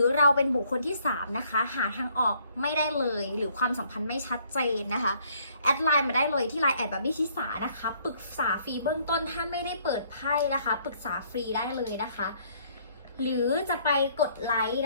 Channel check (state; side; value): inverted; both; correlation -0.64